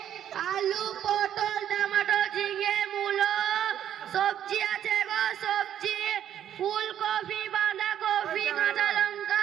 আলু পটল টমেটো ঝিঙে মূলো, সবজি আছে গো সবজি, ফুলকপি বাঁধাকপি কাঁচা লঙ্কা,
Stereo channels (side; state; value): left; quieter; 10.3 dB